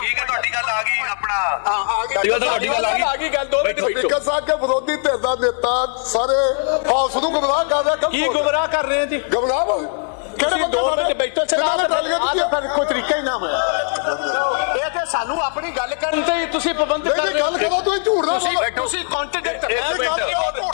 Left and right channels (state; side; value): silent; right; 62 dB below the other